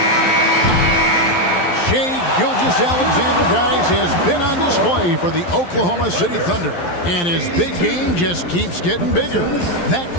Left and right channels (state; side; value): late; right; 11 ms